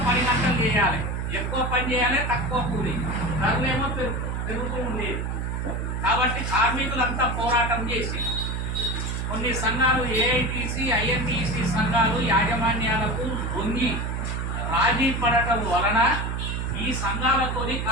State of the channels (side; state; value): right; noise; hum, 2 dB below the sound